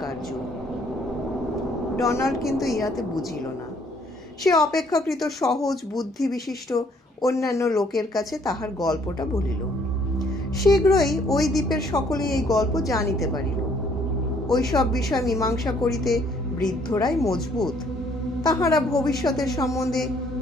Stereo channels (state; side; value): normal; both; correlation 0.64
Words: কার্য। ডোনাল্ড কিন্তু ইহাতে বুঝিল না। সে অপেক্ষাকৃত সহজ বুদ্ধি বিশিষ্ট অন্যান্য লোকের কাছে তাহার গল্পটা বলিল। শীঘ্রই ওই দ্বীপের সকলেই এই গল্প জানিতে পারিল। ওই সব বিষয় মীমাংসা করিতে বৃদ্ধরাই মজবুত। তাহারা ভবিষ্যতের সম্বন্ধে